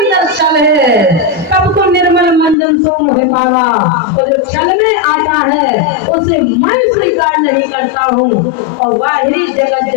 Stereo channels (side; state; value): right; drops out; at 2.6 s